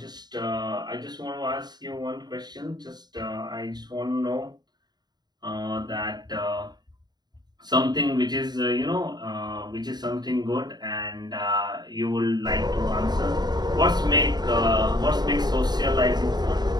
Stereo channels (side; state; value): left; late; 0.20 ms